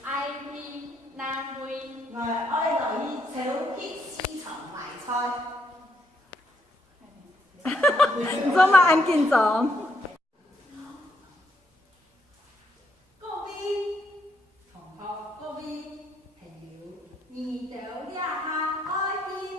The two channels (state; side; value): normal; both; correlation 0.74